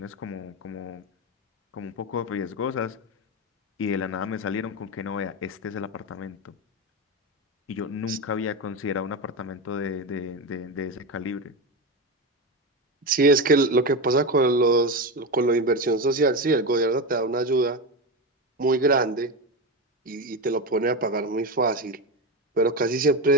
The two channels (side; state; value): both; normal; correlation 0.17